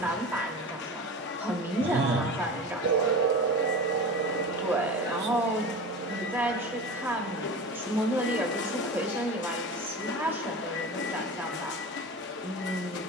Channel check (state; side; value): normal; both; correlation 0.31